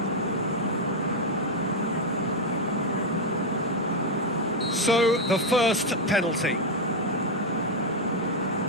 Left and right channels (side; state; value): both; normal; correlation 0.03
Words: So, the first penalty.